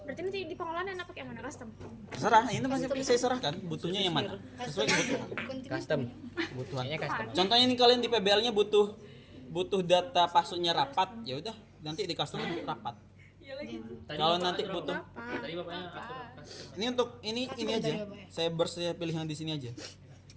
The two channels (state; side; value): identical; both; correlation 1.00